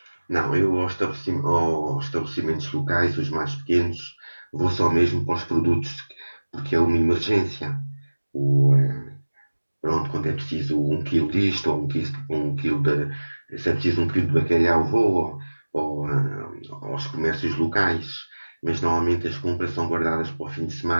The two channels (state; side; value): inverted; both; correlation -1.00